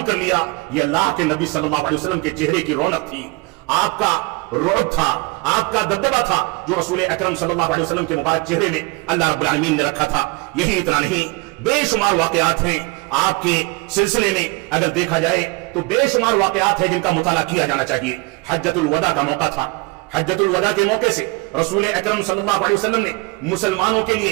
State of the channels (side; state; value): left; quieter; 25.2 dB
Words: کر لیا۔ یہ اللہ کے نبی صلی اللہ علیہ وسلم کے چہرے کی رونق تھی، آپ کا رعب تھا، آپ کا دبدبہ تھا جو رسول اکرم صلی اللہ علیہ وسلم کے مبارک چہرے میں اللہ رب العالمین نے رکھا تھا۔ یہی اتنا نہیں، بے شمار واقعات ہیں آپ کے سلسلے میں، اگر دیکھا جائے تو بے شمار واقعات ہیں جن کا مطالعہ کیا جانا چاہیے۔ حجۃ الوداع کا موقع تھا، حجۃ الوداع کے موقع سے رسول اکرم صلی اللہ علیہ وسلم نے مسلمانوں کے